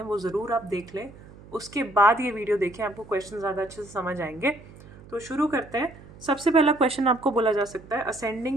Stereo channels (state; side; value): noise; right; hum, 20 dB below the sound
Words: वो ज़रूर आप देख लें, उसके बाद ये वीडियो देखें, आपको क्वेश्चन ज़्यादा अच्छे से समझ आएंगे। तो शुरू करते हैं। सबसे पहला क्वेश्चन आपको बोला जा सकता है